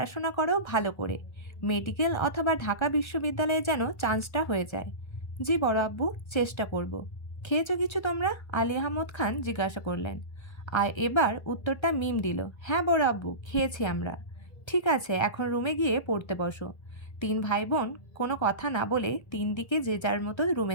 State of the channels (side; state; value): right; late; 1.3 ms